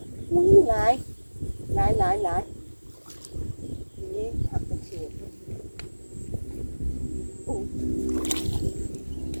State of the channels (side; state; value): both; inverted; correlation -1.00